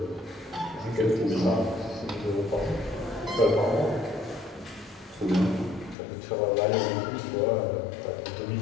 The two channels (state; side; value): drops out; right; at 6.0 s